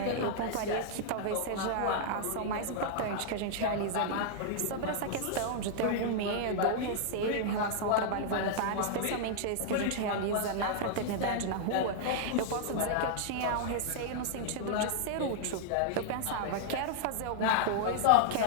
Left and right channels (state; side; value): different; both; correlation -0.01